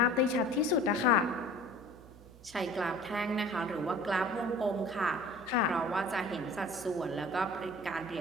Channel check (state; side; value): noise; right; hum, 21 dB below the sound